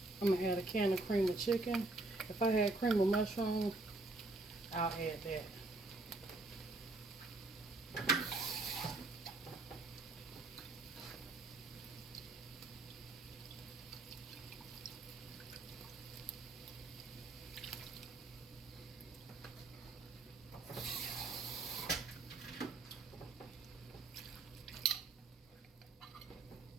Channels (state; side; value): quieter; left; 3.1 dB